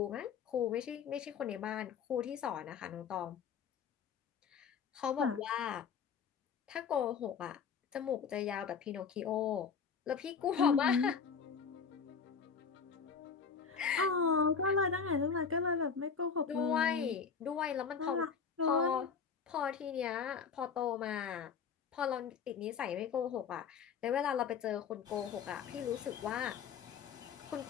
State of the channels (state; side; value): quieter; right; 6.2 dB